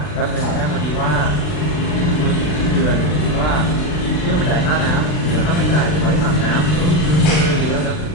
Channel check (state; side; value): late; right; 39 ms